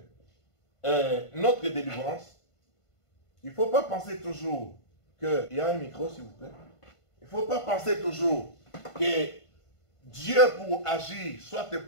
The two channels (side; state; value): right; late; 1.5 ms